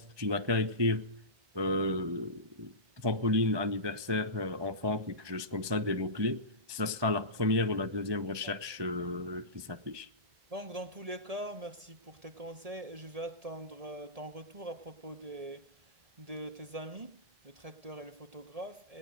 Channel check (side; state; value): left; late; 1.2 ms